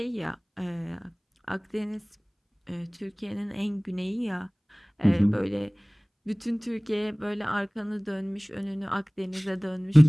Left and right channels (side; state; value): both; identical; correlation 1.00